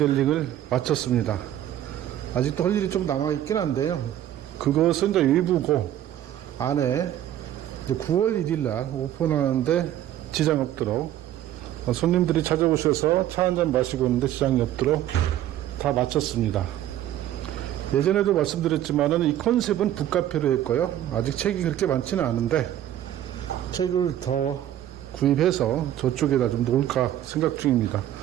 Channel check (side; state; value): left; quieter; 12.0 dB